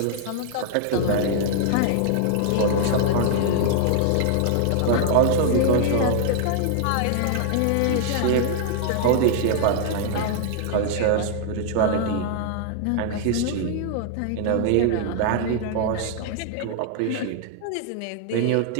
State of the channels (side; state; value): both; different; correlation -0.01